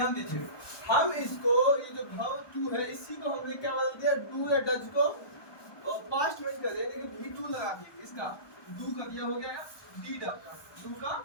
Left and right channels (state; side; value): late; right; 1.2 ms